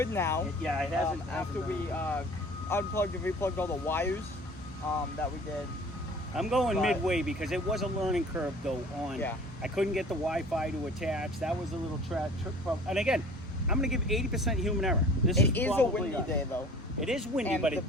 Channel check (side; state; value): both; normal; correlation 0.46